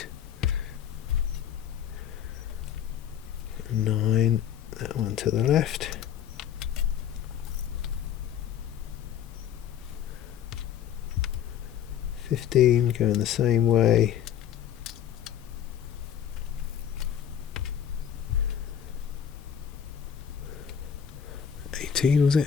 9, that one to the left. 15 going the same way. 18 was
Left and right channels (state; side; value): quieter; right; 9.2 dB